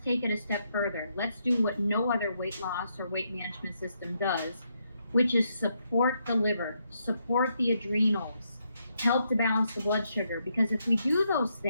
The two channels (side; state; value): both; inverted; correlation -0.78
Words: take it a step further. Let's do what no other weight loss or weight management system does, which is support the liver, support the adrenals, help to balance the blood sugar. Because if we do those